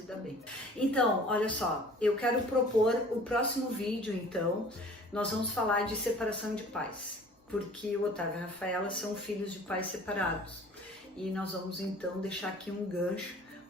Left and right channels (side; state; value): both; normal; correlation 0.48